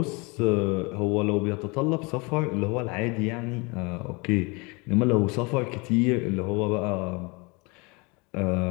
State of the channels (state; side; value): quieter; right; 28.2 dB